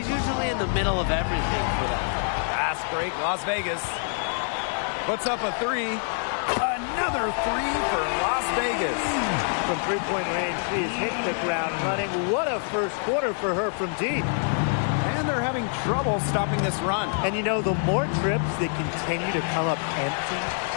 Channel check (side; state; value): right; silent; 61 dB below the other